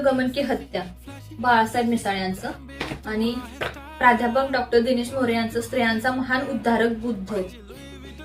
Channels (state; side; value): identical; both; correlation 1.00